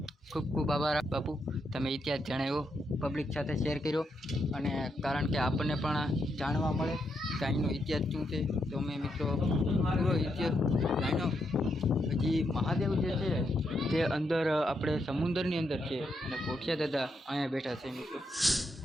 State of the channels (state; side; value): normal; both; correlation 0.81